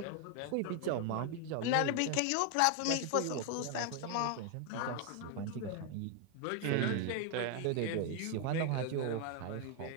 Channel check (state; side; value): different; both; correlation 0.00